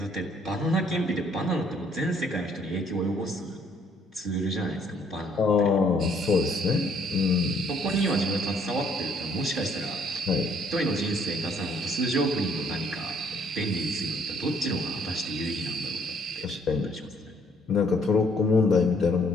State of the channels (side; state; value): both; normal; correlation 0.64